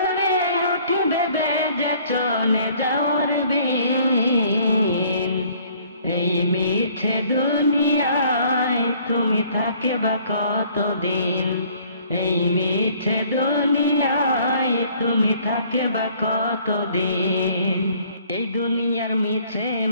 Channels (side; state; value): both; inverted; correlation -0.58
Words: উঠিবে বেজে চলে যাওয়ার দিন। এই মিছে দুনিয়ায় তুমি থাকে বা কতদিন? এই মিছে দুনিয়ায় তুমি থাকে বা কতদিন? এই দুনিয়ার মিছে